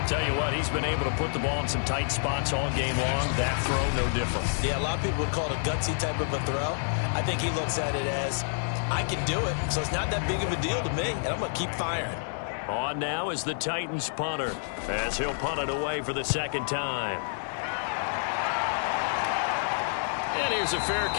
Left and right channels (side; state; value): right; silent; digital silence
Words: Tell you what, he's been able to put the ball in some tight spots all game long. That throw, no different. Yeah, a lot of people would call it a gutsy type of a throw. I think he looks at it as, I can do it, so it's not that big of a deal to me, and I'm going to keep firing. On now is the Titans punter, as he'll punt it away for the 2nd time. And here's a fair